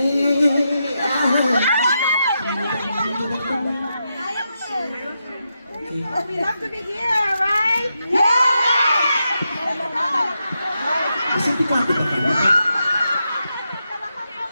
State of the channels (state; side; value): inverted; both; correlation -0.85